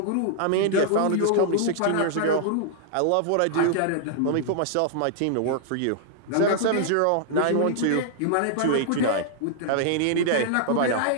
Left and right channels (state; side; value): different; both; correlation -0.01